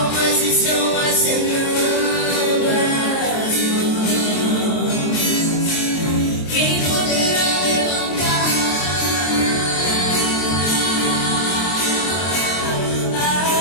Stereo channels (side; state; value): right; late; 23 ms